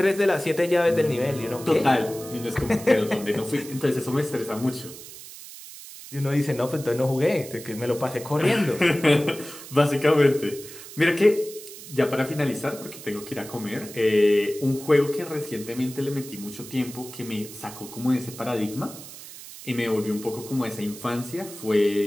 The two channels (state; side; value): noise; right; hiss, 15 dB below the sound